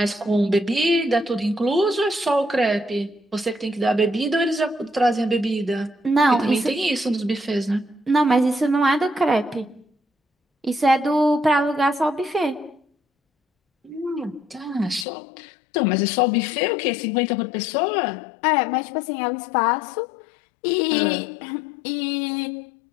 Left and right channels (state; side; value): drops out; right; at 15.1 s